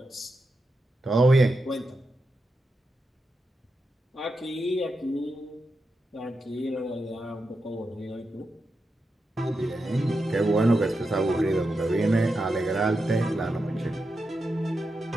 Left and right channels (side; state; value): both; normal; correlation 0.88